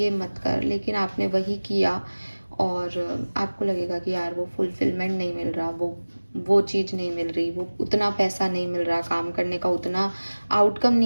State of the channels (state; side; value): inverted; both; correlation -1.00